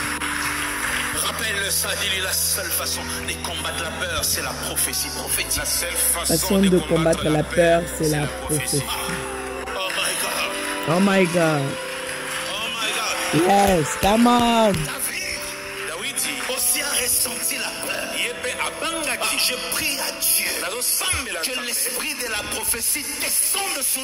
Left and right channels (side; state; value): both; identical; correlation 1.00